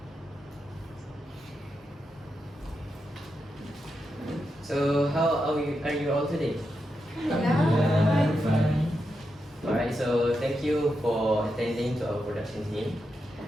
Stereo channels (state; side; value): normal; both; correlation 0.86